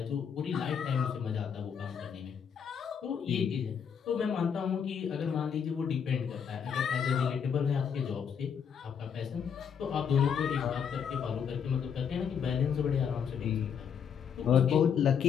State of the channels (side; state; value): right; quieter; 7.4 dB